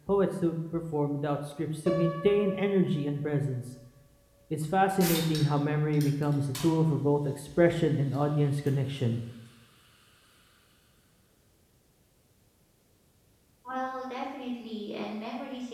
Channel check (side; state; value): both; identical; correlation 1.00